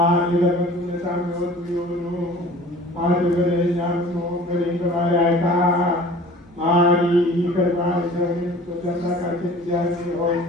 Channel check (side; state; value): both; normal; correlation 0.45